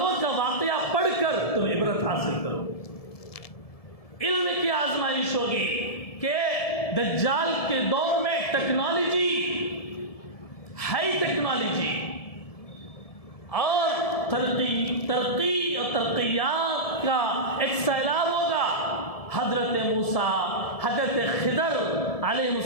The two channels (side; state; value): right; late; 1.7 ms